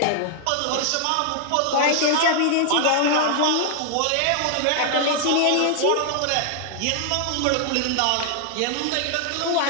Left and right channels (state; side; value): different; both; correlation 0.00